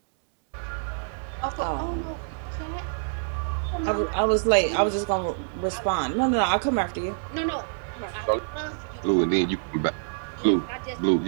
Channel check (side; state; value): left; silent; digital silence